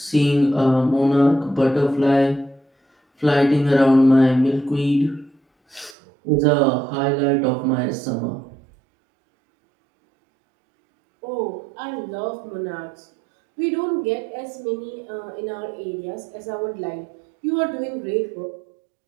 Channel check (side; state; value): left; drops out; at 6.0 s